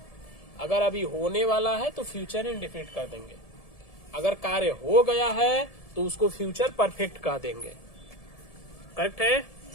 अगर अभी होने वाला है तो फ्यूचर इंडेफिनिट कर देंगे, अगर कार्य हो गया है तो उसको फ्यूचर परफेक्ट कह देंगे, करेक्ट है।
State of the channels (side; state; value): right; late; 1.7 ms